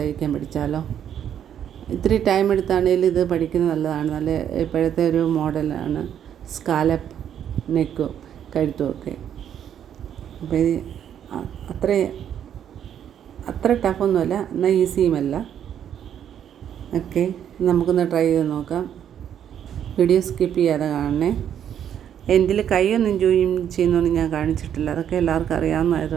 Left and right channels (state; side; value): quieter; left; 9.5 dB